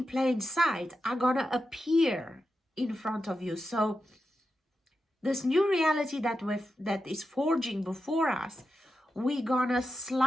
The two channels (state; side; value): normal; both; correlation 0.89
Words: plain sight are gonna appear in front of you. So this new reality that is forging before us, we're gonna